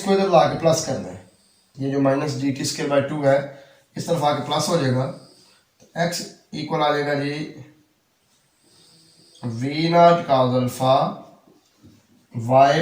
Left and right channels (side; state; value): both; identical; correlation 1.00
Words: इधर ला के प्लस कर दें, ये जो minus G T square by 2 है इस तरफ आके प्लस हो जाएगा, तो एक्स इक्वल आ जाएगा G V not cos alpha Y